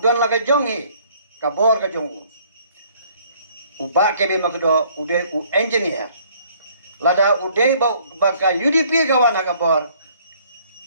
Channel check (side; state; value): both; inverted; correlation -0.60